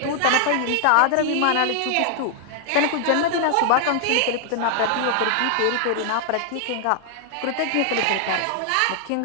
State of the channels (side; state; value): both; different; correlation 0.00